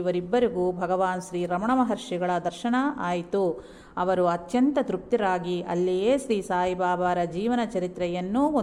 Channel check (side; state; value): both; identical; correlation 1.00